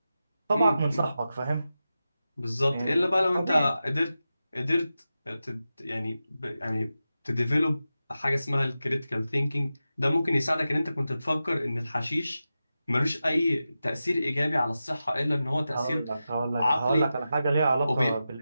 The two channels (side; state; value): both; inverted; correlation -0.92